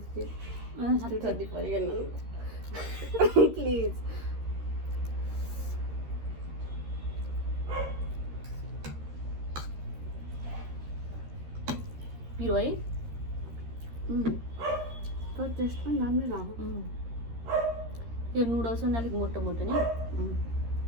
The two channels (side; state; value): left; late; 13 ms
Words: ठन्डी परिगन प्लिज। पिरो है तर टेस्ट पनि राम्रै लाग्यो। यो नुडल्स पनि अलिक मोटो मोटो नि